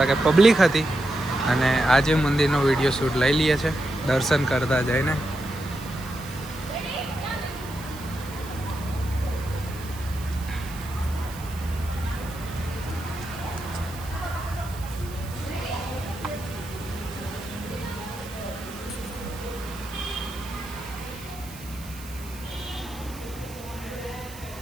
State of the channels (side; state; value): right; noise; hiss, 17 dB below the sound